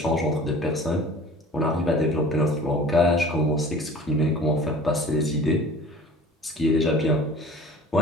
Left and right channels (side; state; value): both; normal; correlation 0.44